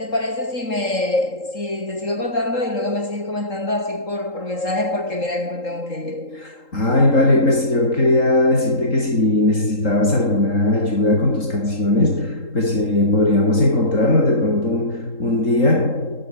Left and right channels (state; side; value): late; right; 3.8 ms